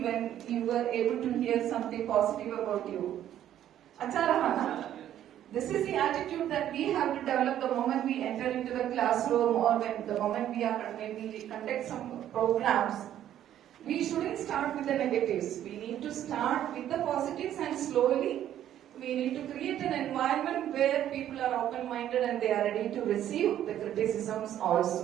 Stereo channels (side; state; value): left; quieter; 11.4 dB